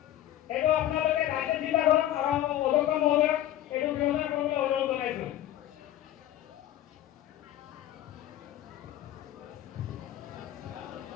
এইটো আপোনালোকে ৰাইজে চিন্তা কৰক আৰু অধ্যক্ষ মহোদয়ক এইটো ব্যৱস্থা কৰিবলৈ অনুৰোধ জনাইছোঁ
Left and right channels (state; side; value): quieter; right; 12.8 dB